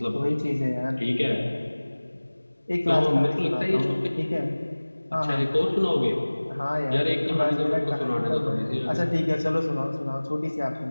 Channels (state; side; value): inverted; both; correlation -1.00